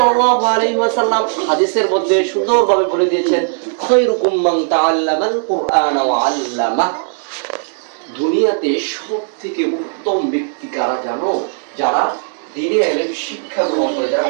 আলাইহি ওয়াসাল্লাম হাদিসের মধ্যে সুন্দরভাবে বলে দিয়েছেন, খায়রুকুম মান তাআল্লামাল কুরআন ওয়া আল্লামা। দুনিয়াতে সবথেকে উত্তম ব্যক্তি কারা জানো? যারা দ্বীনি ইলম শিক্ষা গ্রহণ করে, যারা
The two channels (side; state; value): left; silent; digital silence